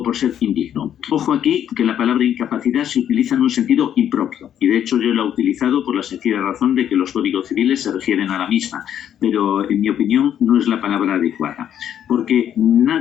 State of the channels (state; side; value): quieter; right; 9.9 dB